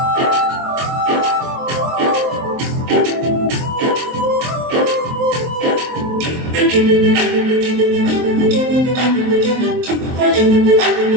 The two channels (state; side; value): late; left; 23 ms